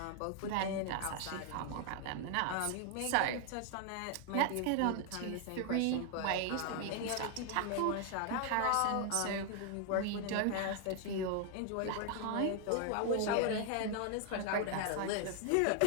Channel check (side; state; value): both; different; correlation 0.00